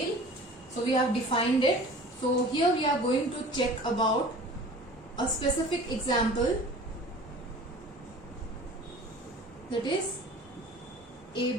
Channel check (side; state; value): both; normal; correlation 0.43